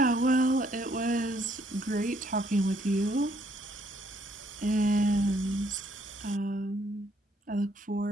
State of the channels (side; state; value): both; normal; correlation 0.67